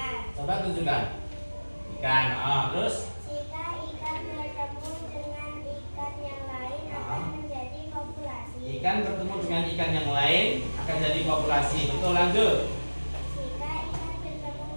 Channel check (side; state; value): both; inverted; correlation -1.00